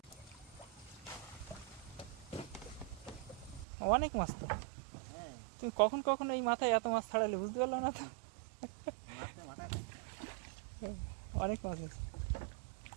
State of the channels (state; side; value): drops out; left; at 3.7 s